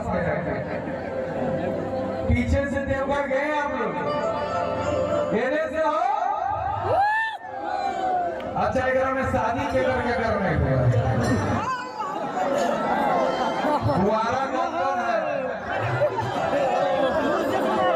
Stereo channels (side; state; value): both; identical; correlation 1.00